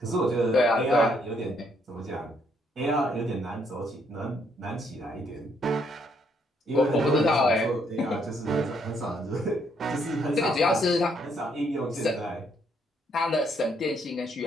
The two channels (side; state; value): both; normal; correlation 0.71